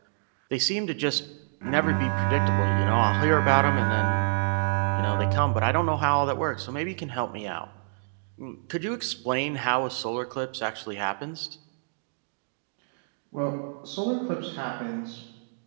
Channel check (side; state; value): left; silent; digital silence